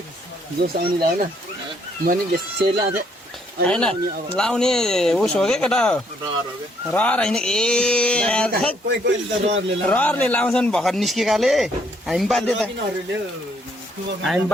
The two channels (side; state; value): both; normal; correlation 0.69